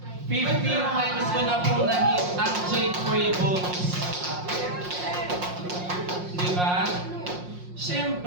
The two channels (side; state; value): left; late; 5.6 ms